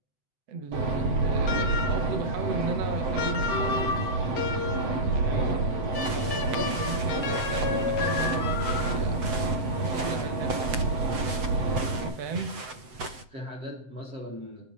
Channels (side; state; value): left; late; 7.9 ms